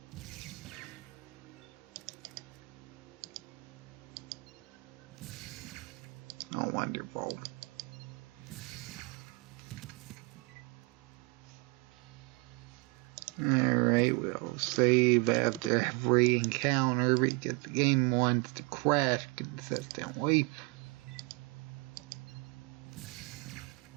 Oh, wonderful. Alright, we'll save after every encounter because the game wants to crash consistently.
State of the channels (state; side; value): quieter; left; 27.5 dB